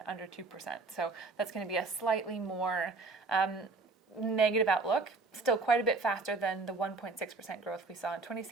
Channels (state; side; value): quieter; left; 3.7 dB